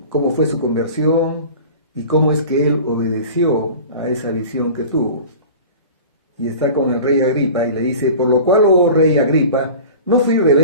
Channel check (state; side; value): inverted; both; correlation -0.39